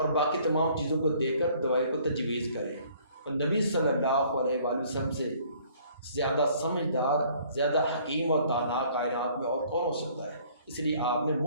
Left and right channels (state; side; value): inverted; both; correlation -0.58